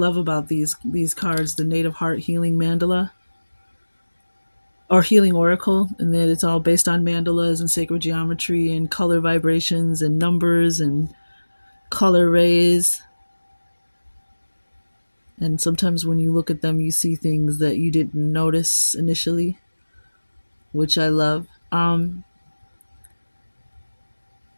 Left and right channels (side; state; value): both; inverted; correlation -1.00